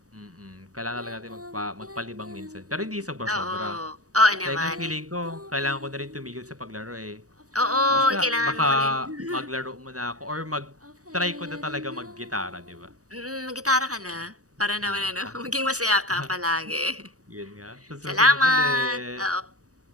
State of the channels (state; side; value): late; left; 0.66 ms